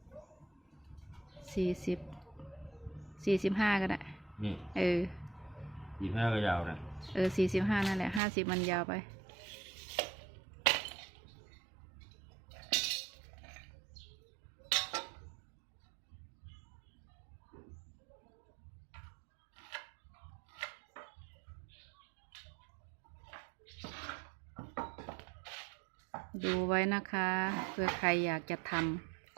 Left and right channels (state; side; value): drops out; left; at 8.2 s